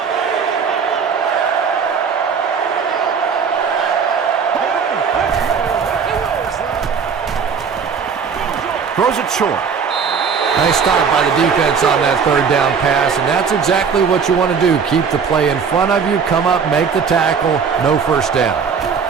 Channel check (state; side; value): quieter; left; 6.2 dB